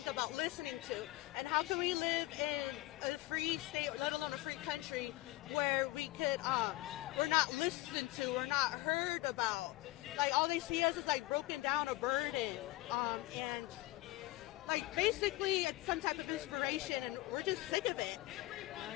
about listening to. And how can we live in a free state, let alone a free country, where we're not listened to, we're not heard about. Like all they see us is like broken down or burdened, and like basically it's some type of inspiration, and we're just sick of it.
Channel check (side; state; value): right; quieter; 18.8 dB